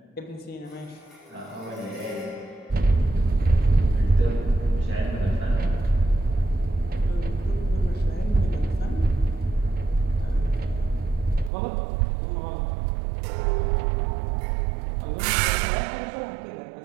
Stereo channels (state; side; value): drops out; left; at 11.5 s